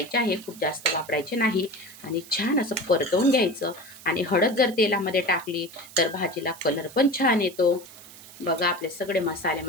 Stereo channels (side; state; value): right; noise; hiss, 19 dB below the sound